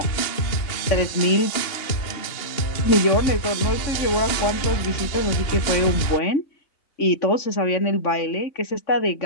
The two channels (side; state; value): right; late; 2.9 ms